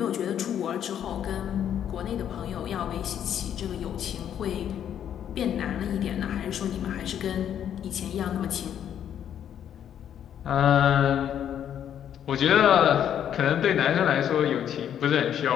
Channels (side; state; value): right; quieter; 9.6 dB